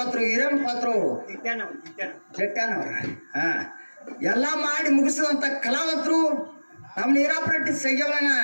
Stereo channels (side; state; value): both; inverted; correlation -1.00